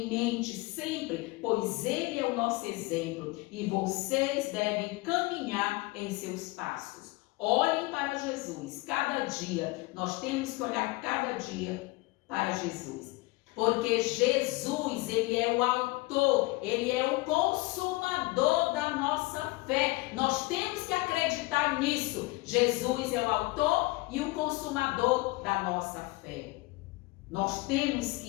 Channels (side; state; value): right; quieter; 22.0 dB